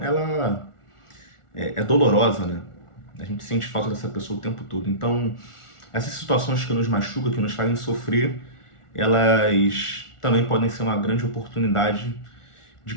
ela é dolorosa, né? A gente sente falta dessa pessoa o tempo todo. Então, essas situações que nos machucam, que nos fazem sofrer, elas também podem ser uma grande oportunidade de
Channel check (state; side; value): late; right; 1.4 ms